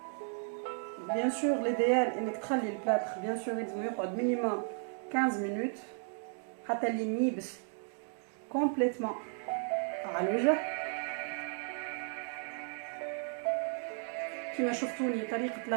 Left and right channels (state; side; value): silent; left; 55 dB below the other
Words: Bien sûr, l'idéal انك تخلي البلاتر bien sûr يلزم يقعد minimum 15 minutes حتى اللي يبس complètement على الوجه. كما شفتوني طريقة